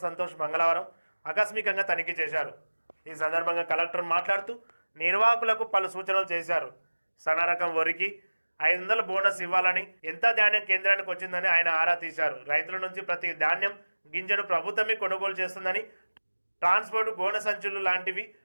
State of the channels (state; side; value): inverted; both; correlation -1.00